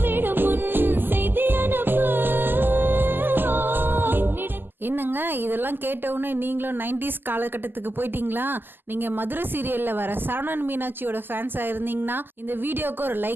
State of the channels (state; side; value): late; left; 0.094 ms